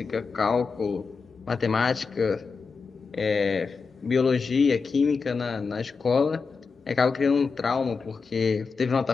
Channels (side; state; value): right; quieter; 4.9 dB